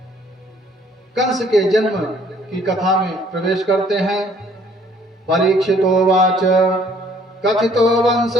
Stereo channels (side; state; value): both; normal; correlation 0.60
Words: कंस के जन्म की कथा में प्रवेश करते हैं। परीक्षितोवाच, कथितो वंश